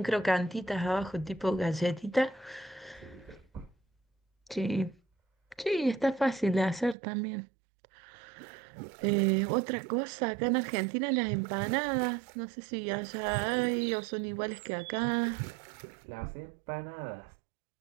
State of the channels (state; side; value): drops out; left; at 7.0 s